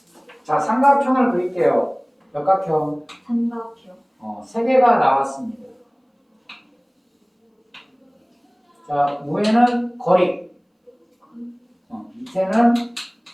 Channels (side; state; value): both; identical; correlation 1.00